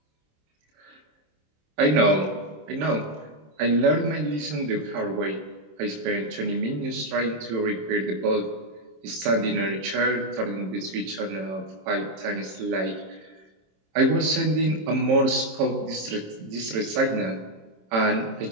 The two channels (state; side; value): late; left; 27 ms